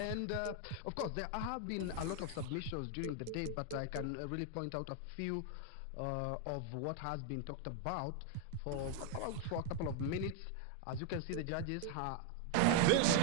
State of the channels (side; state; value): both; different; correlation 0.01